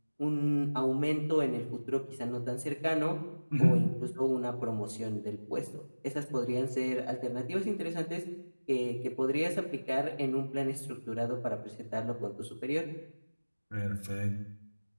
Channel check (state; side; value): inverted; both; correlation -1.00